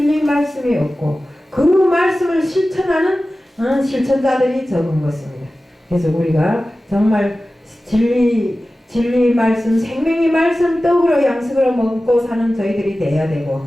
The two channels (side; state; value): both; normal; correlation 0.96